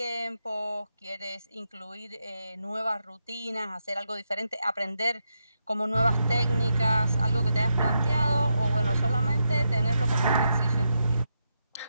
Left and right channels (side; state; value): both; inverted; correlation -0.84